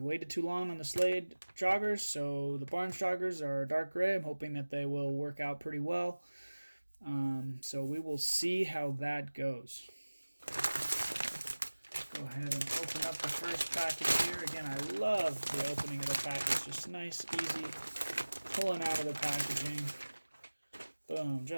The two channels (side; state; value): both; inverted; correlation -1.00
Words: too long on the Slade joggers, so the Barnes joggers are dark gray. I'm hoping that they will work out pretty well, so we will see how that goes. Go ahead and open up the first package here. Again, I love the opening of the package, just nice, easy, pulling out of the packaging. Boom,